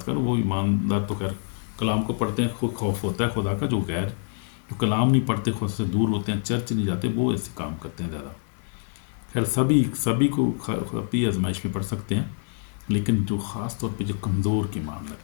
کروں. وہ ایماندار تو خیر کلام کو پڑھتے ہیں, خود خوف ہوتا ہے خدا کا. جو کلام نہیں پڑھتے, خود سے دور ہوتے ہیں, چرچ نہیں جاتے, وہ ایسے کام کرتے ہیں زیادہ. خیر سبھی کو اپنی آزمائش میں پڑھ سکتے ہیں, لیکن جو خاص طور پہ جو کمزور کی معاملہ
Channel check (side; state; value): right; silent; 59 dB below the other